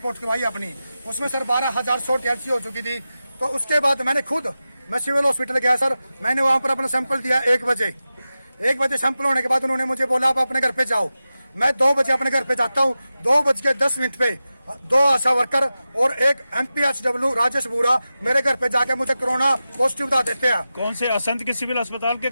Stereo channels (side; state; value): both; inverted; correlation -0.93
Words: करवाई अपनी। उसमें सर 12,100 TLC हो चुकी थी। तो उसके बाद मैं सिविल हॉस्पिटल गया सर। मैंने वहां पर अपना सैंपल दिया 1 बजे। 1 बजे सैंपल होने के बाद उन्होंने मुझे बोला आप अपने घर पे जाओ। मैं 2 बजे अपने घर पे जाता हूँ। 2:10 पे 2 आशा वर्कर और एक MPHW राजेश बुरा मेरे घर पे जाके मुझे कोरोना पॉजिटिव बता देते हैं। कौन से असंध के सिविल अस्पताल के